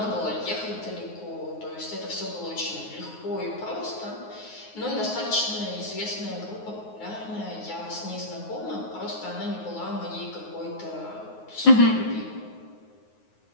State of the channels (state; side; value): late; right; 9.5 ms